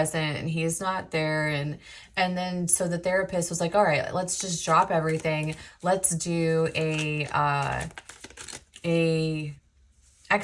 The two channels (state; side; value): identical; both; correlation 1.00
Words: and he is not there. And then so the therapist was like, all right, let's just drop everything. Let's do a